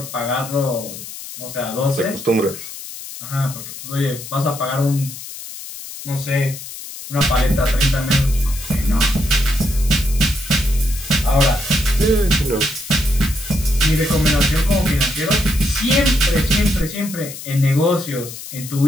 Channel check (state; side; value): noise; left; hiss, 12 dB below the sound